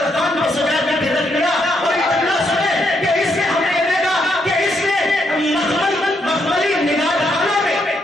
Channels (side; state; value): both; normal; correlation 0.76